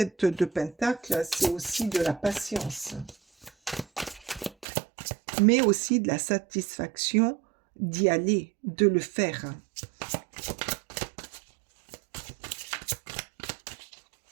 de Pentacle, c'est aussi de la patience. Mais aussi de la satisfaction d'y aller, de le faire.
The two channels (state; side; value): drops out; left; at 4.7 s